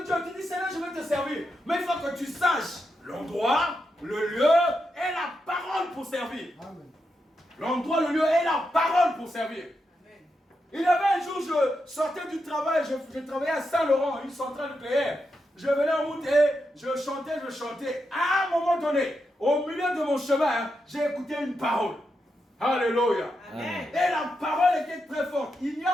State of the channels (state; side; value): normal; both; correlation 0.85